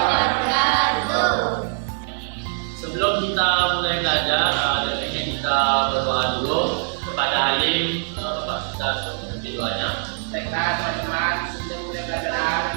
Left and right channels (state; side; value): silent; left; 57 dB below the other